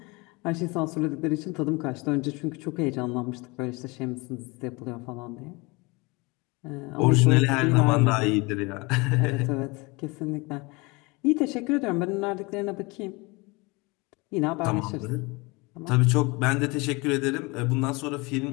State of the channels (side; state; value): right; quieter; 26.0 dB